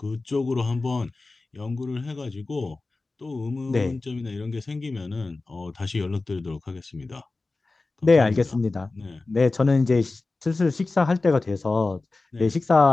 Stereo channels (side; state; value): right; quieter; 3.4 dB